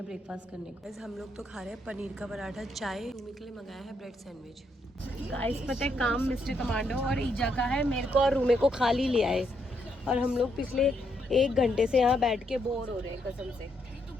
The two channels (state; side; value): normal; both; correlation 0.77